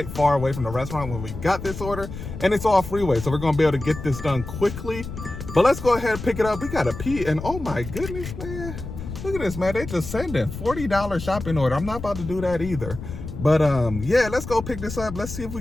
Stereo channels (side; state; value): left; noise; rumble, 9 dB below the sound